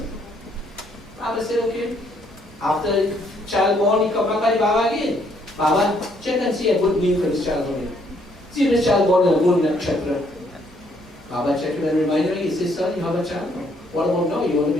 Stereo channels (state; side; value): normal; both; correlation 0.68